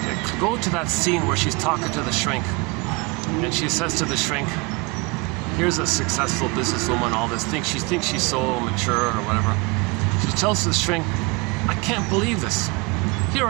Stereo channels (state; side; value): quieter; left; 26.9 dB